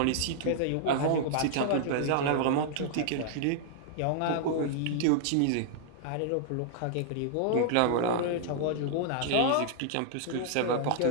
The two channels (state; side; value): different; both; correlation -0.01